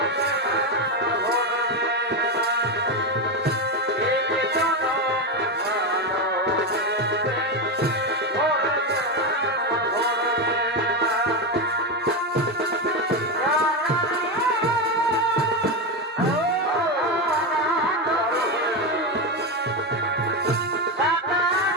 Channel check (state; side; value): normal; both; correlation 0.12